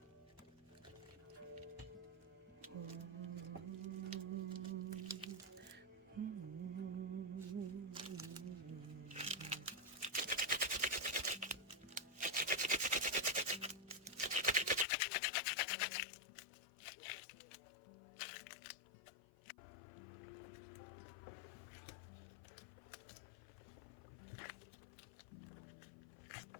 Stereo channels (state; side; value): drops out; right; at 14.9 s